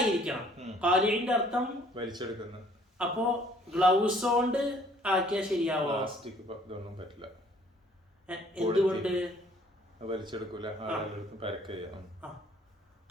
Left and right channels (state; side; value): normal; both; correlation 0.59